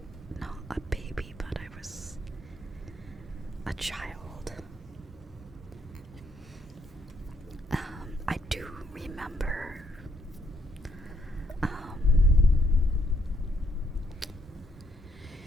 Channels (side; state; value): both; normal; correlation 0.73